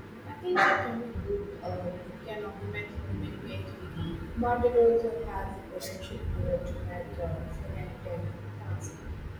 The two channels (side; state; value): both; identical; correlation 1.00